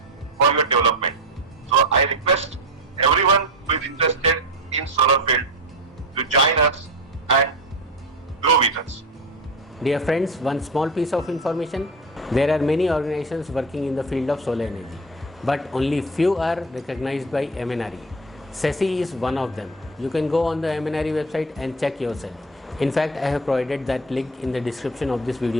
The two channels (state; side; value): normal; both; correlation 0.26